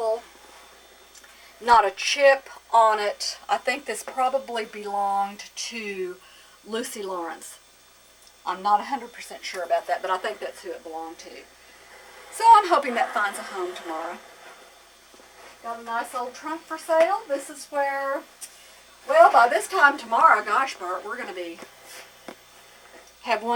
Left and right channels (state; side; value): identical; both; correlation 1.00